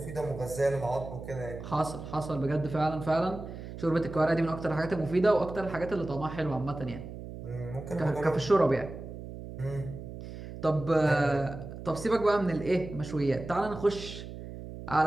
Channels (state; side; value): noise; right; hum, 11 dB below the sound